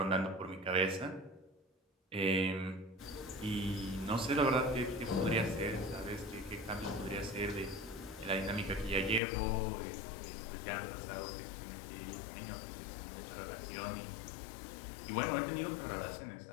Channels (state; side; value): drops out; right; at 9.2 s